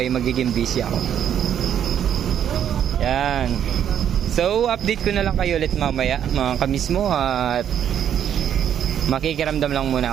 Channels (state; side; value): quieter; left; 9.4 dB